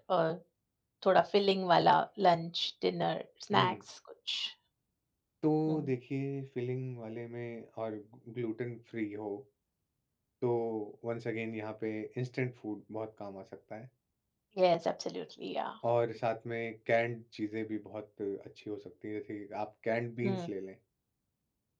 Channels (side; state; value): both; identical; correlation 1.00